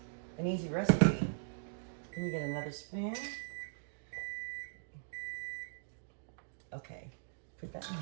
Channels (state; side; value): silent; left; digital silence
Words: an easy recipe. Let me get another spoon. Okay, put that